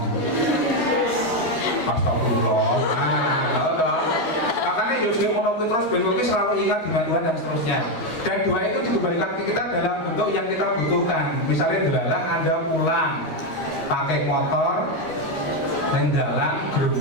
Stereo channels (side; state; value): right; late; 13 ms